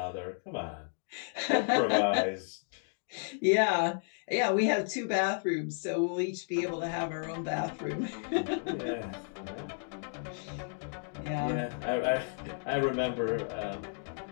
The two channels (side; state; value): right; silent; 56 dB below the other